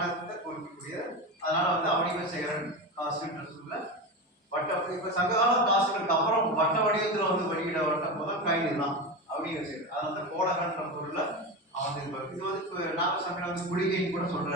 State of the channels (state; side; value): normal; both; correlation 0.21